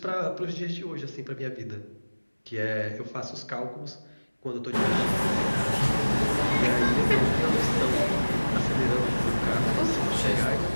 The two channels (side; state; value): both; inverted; correlation -1.00